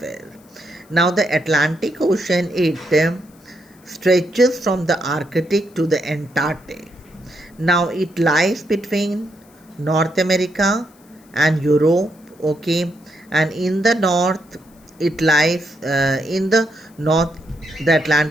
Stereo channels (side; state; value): left; noise; hiss, 30 dB below the sound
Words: Now, the Atlantic Ocean, it stretches from the Arctic to the Antarctic. Now, it lies between North America and Europe, okay, and in the north, it lies in the north, the